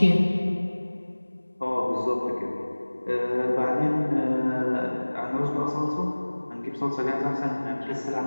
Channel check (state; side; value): inverted; both; correlation -1.00